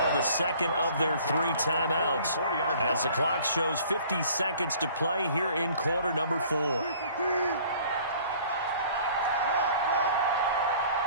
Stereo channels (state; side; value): inverted; both; correlation -0.52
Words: the second of their 3 timeouts as the clock shows 50 seconds to play here in quarter number 4.